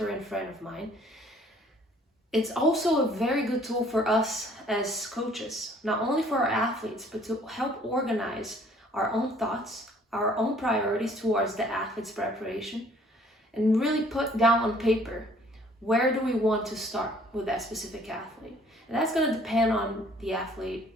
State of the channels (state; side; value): normal; both; correlation 0.58